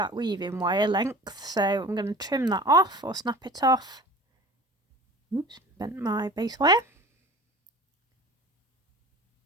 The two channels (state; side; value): normal; both; correlation 0.41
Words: weaving wire length, so I'm going to trim that off or snap it off. Oops, bent my base wire.